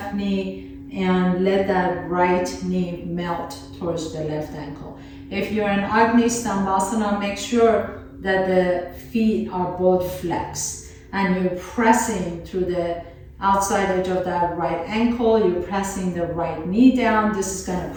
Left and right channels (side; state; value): both; identical; correlation 1.00